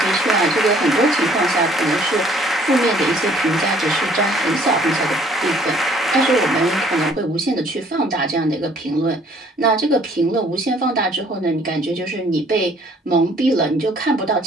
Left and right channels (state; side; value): normal; both; correlation 0.59